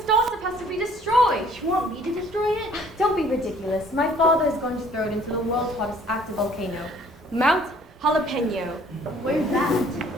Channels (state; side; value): normal; both; correlation 0.57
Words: star stuff has to be destroyed. You want me to destroy it? Don't be ridiculous. My father is going to throw it into the world's hottest active volcano, Mount Jalapeno. Where's that?